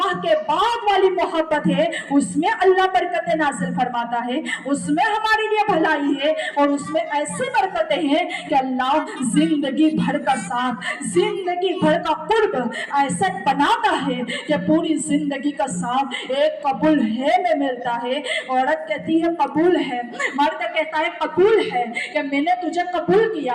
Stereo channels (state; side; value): identical; both; correlation 1.00